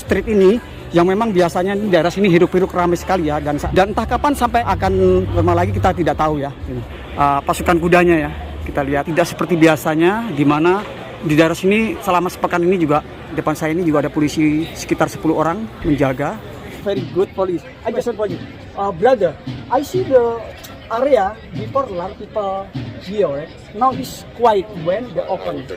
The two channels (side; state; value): both; identical; correlation 1.00